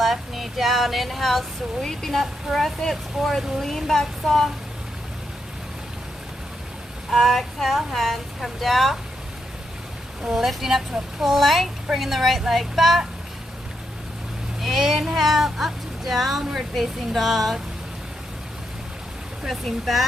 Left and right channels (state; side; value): normal; both; correlation 0.82